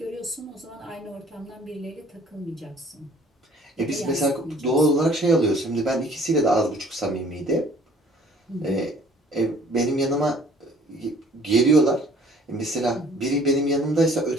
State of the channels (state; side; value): normal; both; correlation 0.55